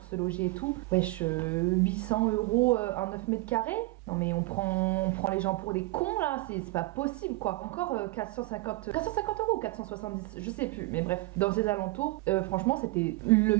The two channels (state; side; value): quieter; left; 21.1 dB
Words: ce logis et tout. Wesh, 800 € un 9 mètres carrés. Non mais on prend les gens pour des cons là, c'est pas possible quoi. Encore 450 € 470, je sais plus, mais bref, dans ces alentours, franchement c'était le